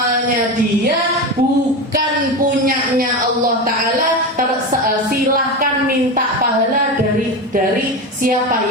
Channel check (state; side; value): normal; both; correlation 0.21